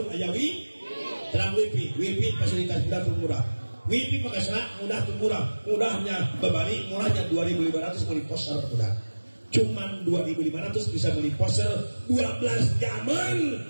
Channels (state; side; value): inverted; both; correlation -1.00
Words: aya wifi terang wifi fasilitas murah wifi pakai serat mudah tuh mudahnya bebari murahnya 2.500 beli poster udah cuman 2.500 bisa beli poster 12 jaman